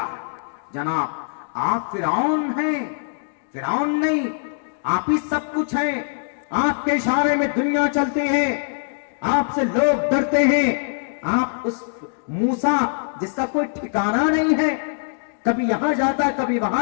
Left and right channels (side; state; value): right; silent; digital silence